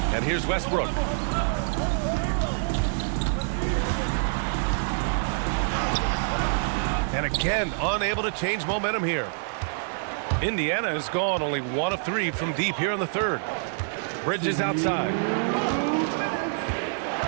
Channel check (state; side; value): silent; left; 61 dB below the other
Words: And here's Westbrook. And again, unable to change momentum here. Indiana has gone only 1 of 3 from deep here in the third. Bridges outside.